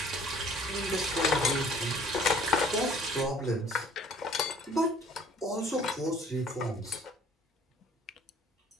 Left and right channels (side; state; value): both; normal; correlation 0.54